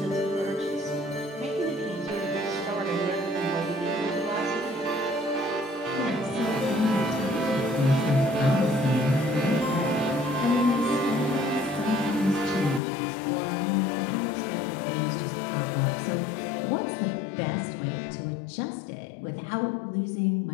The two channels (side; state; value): right; drops out; at 12.8 s